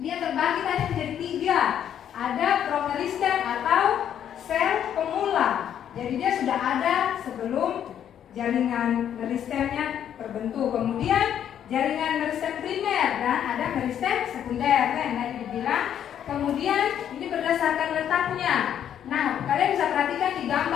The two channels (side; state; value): right; quieter; 9.6 dB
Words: terbagi tadi menjadi 3. Ada promeristem atau sel pemula. Jadi dia sudah ada sebelum jaringan meristemnya terbentuk. Kemudian jaringan meristem primer dan ada meristem sekunder yang tadi dibilang. Kemudian ini berdasarkan letaknya. Nah, kalian bisa perhatikan di